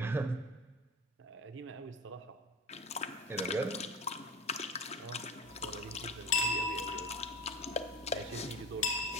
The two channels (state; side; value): normal; both; correlation 0.31